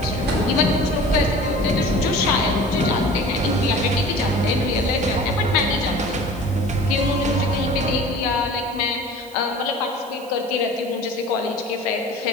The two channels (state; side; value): noise; right; hiss, 23 dB below the sound